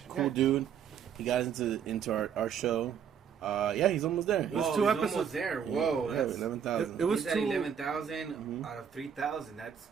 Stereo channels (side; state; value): left; quieter; 7.9 dB